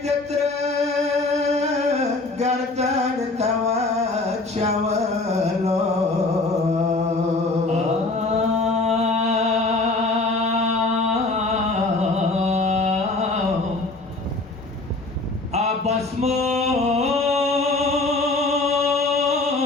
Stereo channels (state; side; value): quieter; right; 3.3 dB